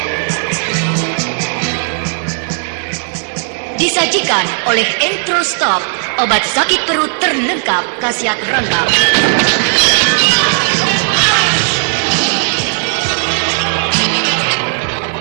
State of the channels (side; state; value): left; silent; 62 dB below the other